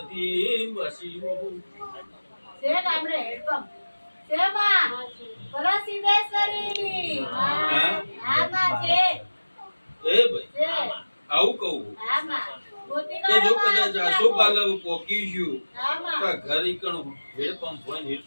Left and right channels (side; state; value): both; inverted; correlation -1.00